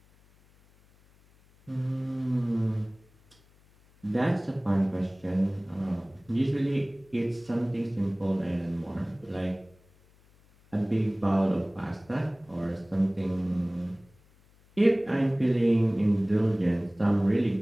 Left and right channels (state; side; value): noise; left; hum, 30 dB below the sound